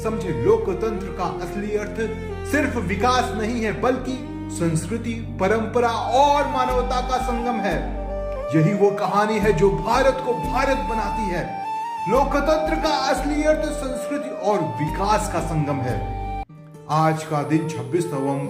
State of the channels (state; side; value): identical; both; correlation 1.00